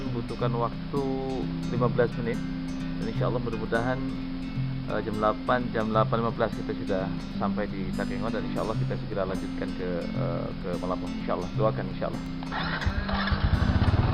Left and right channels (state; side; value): identical; both; correlation 1.00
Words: membutuhkan waktu 15 menit dan insya Allah mudah-mudahan jam 8, jam 8.15 kita sudah sampai di Takengon dan insya Allah kita segera lanjutkan ke Malabo. Insya Allah, doakan insya Allah.